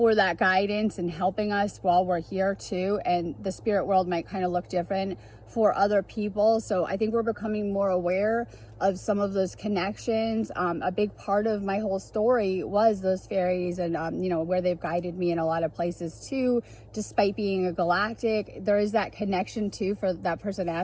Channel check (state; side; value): identical; both; correlation 1.00